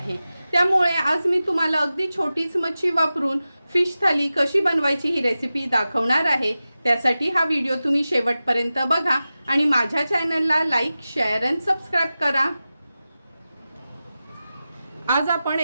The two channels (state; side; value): inverted; both; correlation -0.94